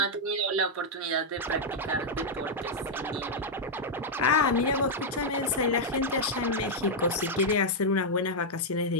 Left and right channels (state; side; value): normal; both; correlation -0.03